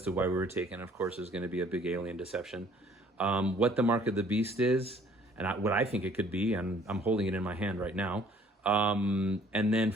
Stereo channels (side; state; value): both; normal; correlation 0.57